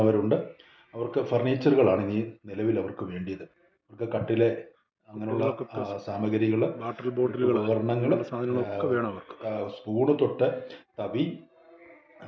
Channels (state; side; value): identical; both; correlation 1.00